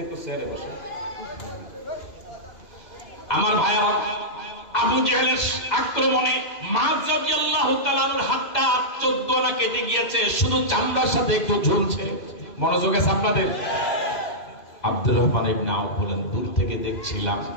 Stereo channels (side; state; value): right; late; 2.1 ms